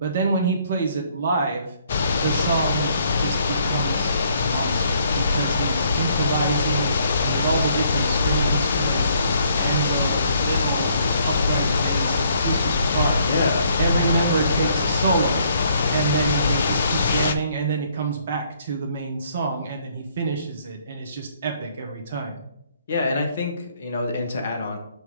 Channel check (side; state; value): both; inverted; correlation -0.67